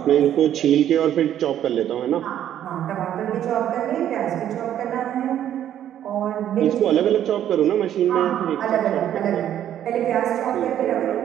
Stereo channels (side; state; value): left; quieter; 10.9 dB